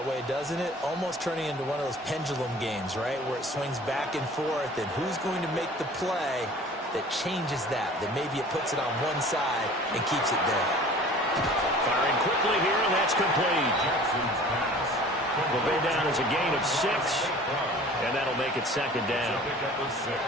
way, doesn't it? Almost turning into one of those pendulum games, right, where it swings back and forth, and who's going to make the play that changes that maybe it puts it on one side and keeps it there. Firing quickly here, and that's complete. Will go down as a gain of 6, and that'll make it second down.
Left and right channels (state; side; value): normal; both; correlation 0.46